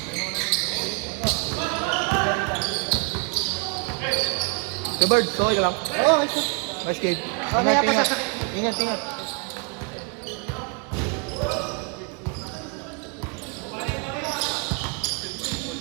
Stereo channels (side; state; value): left; quieter; 34.6 dB